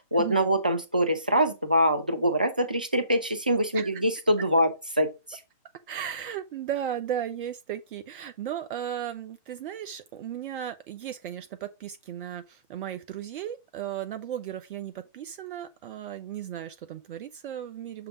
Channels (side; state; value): both; inverted; correlation -0.58